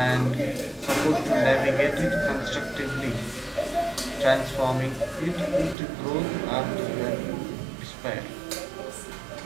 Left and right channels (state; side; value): drops out; left; at 5.8 s